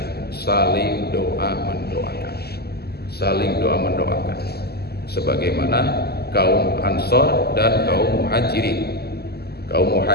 saling doa mendoakan. Saling doa mendoakan. Sebagaimana kaum Ansor dan kaum Muhajirin. Kaum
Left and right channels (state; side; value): late; right; 0.46 ms